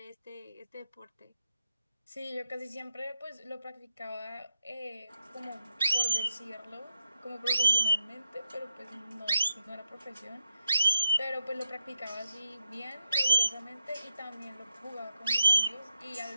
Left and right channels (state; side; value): inverted; both; correlation -0.87